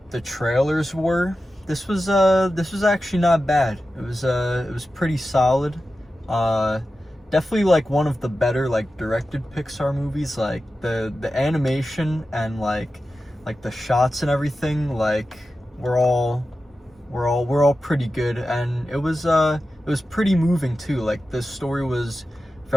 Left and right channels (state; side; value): normal; both; correlation 0.93